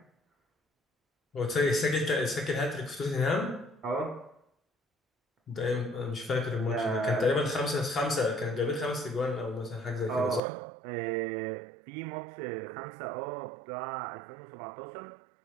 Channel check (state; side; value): drops out; left; at 10.4 s